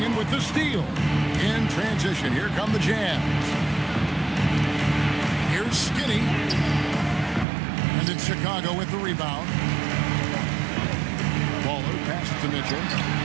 with the steal. In transition, here come the Jazz. Here's Skinny. And then Chicago with the rebound. Baller passes to Mitchell.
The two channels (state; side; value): drops out; left; at 7.5 s